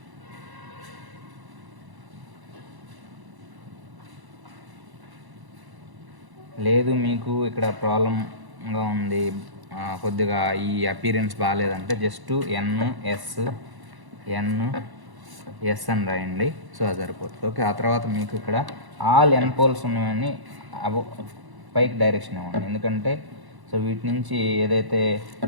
లేదు మీకు ఇక్కడ ప్రాబ్లంగా ఉంది, కొద్దిగా ఈ అపీరెన్స్ బాగాలేదంటే జస్ట్ ఎన్ఎస్ అని రాయండి. సో అది సరిపోతుంది. ఓకే, ఆ తర్వాత మీకు ఇక్కడ ఆల్ ఎన్ పోల్స్ ఉన్నవన్నీ పైకి డైరెక్షన్ ఇవ్వండి. ఎందుకంటే సో వీటి నుంచి ఏదైతే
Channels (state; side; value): late; left; 1.1 ms